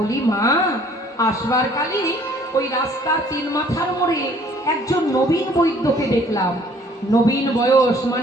মা, আসবার কালে ওই রাস্তার তিন মাথার মোড়ে একজন নবীন বৈদ্যকে দেখলাম। নবীন বয়স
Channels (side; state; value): both; normal; correlation 0.57